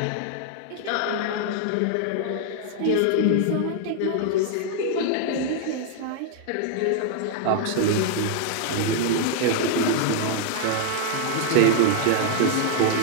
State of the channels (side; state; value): both; different; correlation 0.00